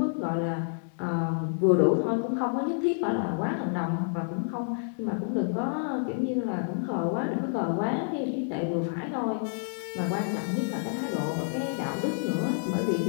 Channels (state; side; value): silent; right; 59 dB below the other